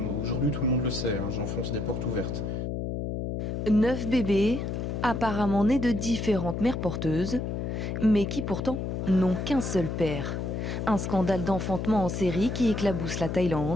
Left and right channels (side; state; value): left; noise; hum, 3 dB below the sound